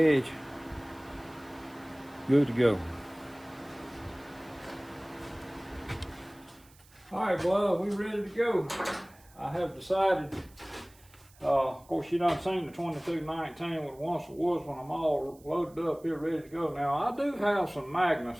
Good to go. All right, blood, we ready to go. I have decided, of course, you done seen the 2219 with once it was when I'm all loaded up here, ready to go. Now, I do have some Magnus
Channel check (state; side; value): noise; right; hiss, 27 dB below the sound